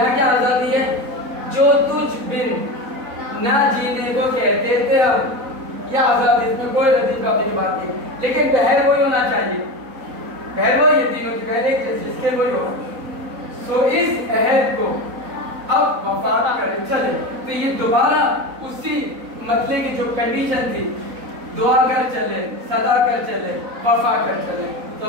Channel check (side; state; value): left; late; 3.9 ms